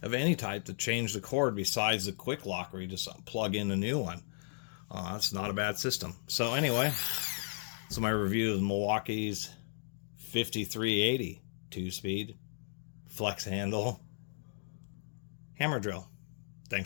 of any type to change the cord besides the quick lock, where you just plug in a new one. It's not a bad system. So anyway, so my review of Milwaukee's 5380 2-speed flex handle hammer drill.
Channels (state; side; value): silent; right; digital silence